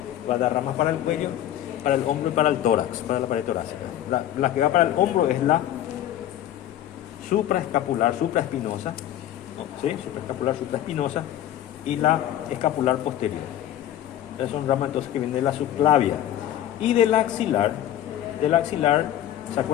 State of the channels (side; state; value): right; quieter; 11.9 dB